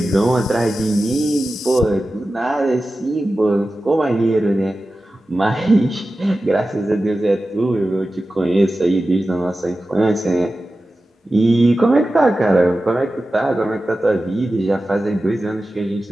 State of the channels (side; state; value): both; normal; correlation 0.94